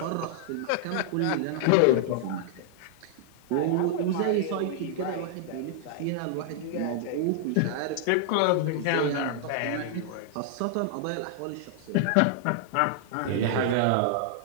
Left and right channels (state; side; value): different; both; correlation -0.01